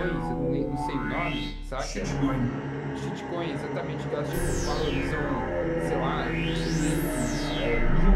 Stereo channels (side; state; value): both; identical; correlation 1.00